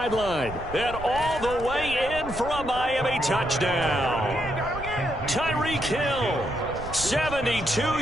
And all the way in for a Miami touchdown. Tyreek Hill, 72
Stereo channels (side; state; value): right; noise; rumble, 12 dB below the sound